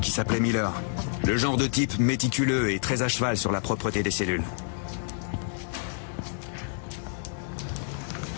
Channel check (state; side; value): silent; right; digital silence